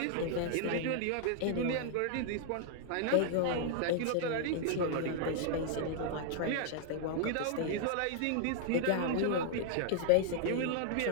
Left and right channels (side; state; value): both; different; correlation 0.00